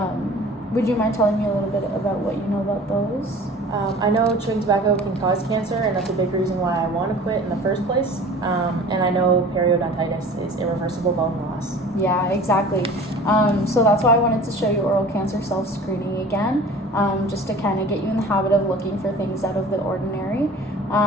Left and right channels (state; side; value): normal; both; correlation 0.43